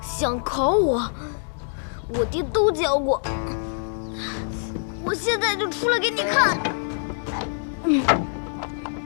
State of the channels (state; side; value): silent; right; digital silence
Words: 想考我，我爹都教过。我现在就出来给你看。